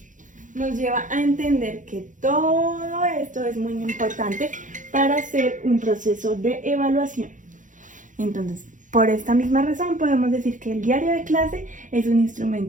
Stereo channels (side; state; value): left; late; 0.37 ms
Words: nos lleva a entender que todo esto es muy importante para hacer un proceso de evaluación. Entonces, por esta misma razón podemos decir que el diario de clase es un